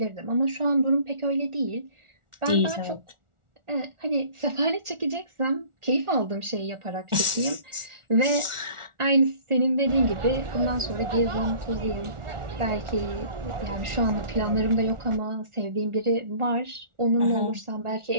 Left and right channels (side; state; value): left; late; 1.4 ms